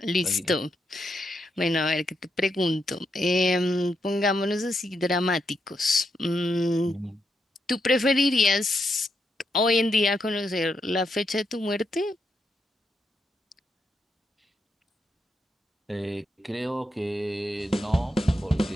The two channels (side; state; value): both; normal; correlation 0.81